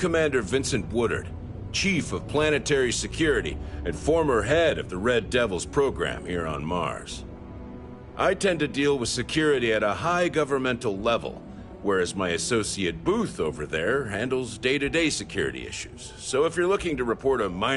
Vincent Woodard, Chief of Planetary Security and former head of the Red Devils program here on Mars. I tend to deal with security at a high governmental level, whereas my associate Booth over there handles day-to-day security issues. So if you're looking to report a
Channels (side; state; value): both; identical; correlation 1.00